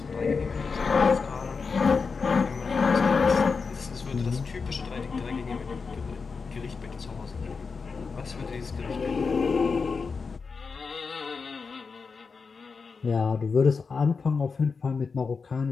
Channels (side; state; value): right; quieter; 5.0 dB